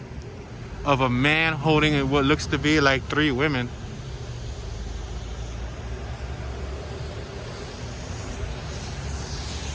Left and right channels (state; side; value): identical; both; correlation 1.00